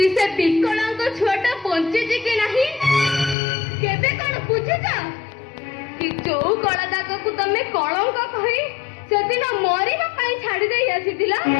से विकलांग छुआटा बंचिची कि नहीं केते कण बुझिच कि जो कलादाग को तमे कलंक कहि सेदिन मरिबा पई छाडी देई आसीतिला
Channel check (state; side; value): drops out; right; at 3.4 s